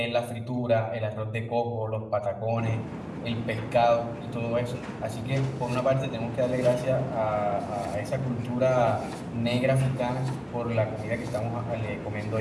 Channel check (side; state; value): both; identical; correlation 1.00